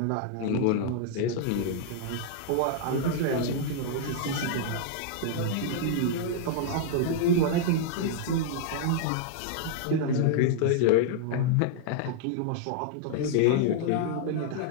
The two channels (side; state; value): both; different; correlation -0.01